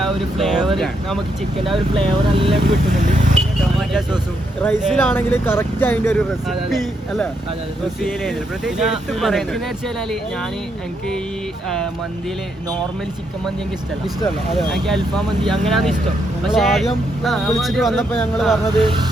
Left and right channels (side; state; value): both; normal; correlation 0.78